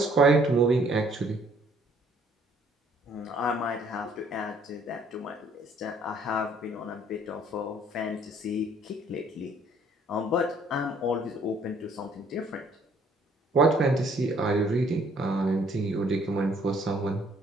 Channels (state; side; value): normal; both; correlation 0.62